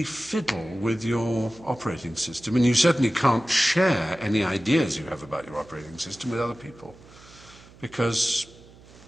fiddle with your operating system, and you certainly can't share any ideas you have about your operating system with other people, because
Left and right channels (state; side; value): noise; right; hum, 23 dB below the sound